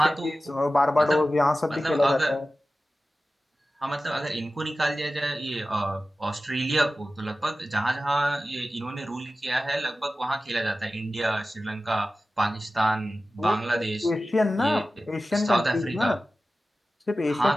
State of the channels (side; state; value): both; normal; correlation 0.95